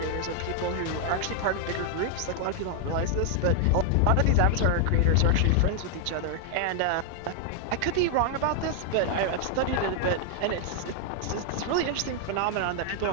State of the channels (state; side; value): different; both; correlation 0.00